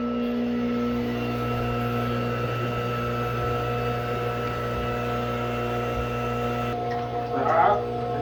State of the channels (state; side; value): identical; both; correlation 1.00